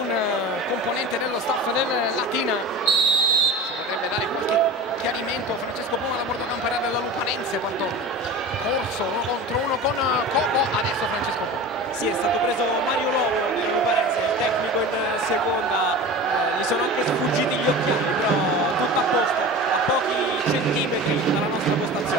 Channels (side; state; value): both; normal; correlation 0.33